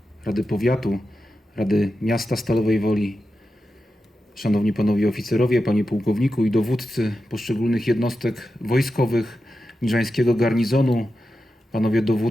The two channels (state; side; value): normal; both; correlation 0.90